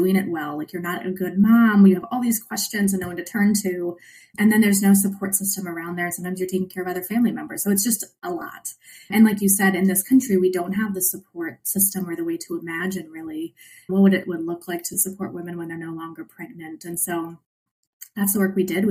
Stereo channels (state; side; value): identical; both; correlation 1.00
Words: it well, like you're not a good mom. You have all these questions and no one to turn to. And then there's no support system around there. Sometimes you're taking care of other family members. So it's just a lot. And like you said, in this country, we don't have the support system or the way to imagine really what it would look like to support women when they're no longer pregnant. And so that's the work we did.